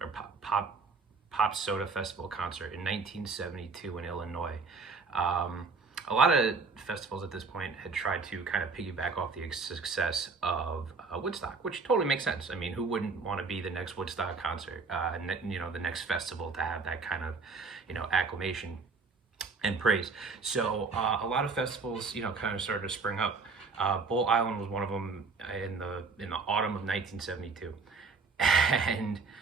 pop soda festival concert in 1972 in Illinois. A lot of festivals at this point had tried to kind of piggyback off the success of Woodstock, which totally makes sense. I mean, who wouldn't want to be the next Woodstock concert? The next festival to have that kind of, acclamation and praise. So a lot of festivals, kind of started to spring up. Bull Island was one of them in the autumn of 1972, and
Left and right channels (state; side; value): quieter; left; 4.5 dB